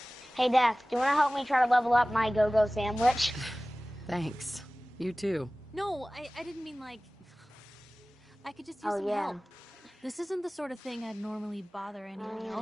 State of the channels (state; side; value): normal; both; correlation 0.98